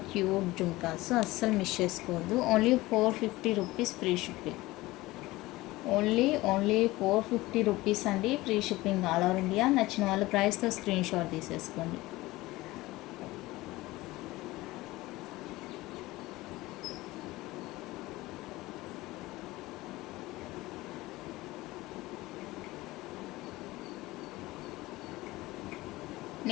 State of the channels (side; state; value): right; quieter; 19.1 dB